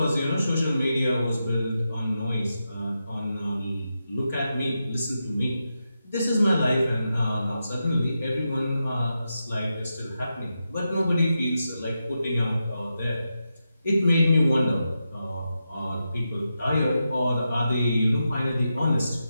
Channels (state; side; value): inverted; both; correlation -0.88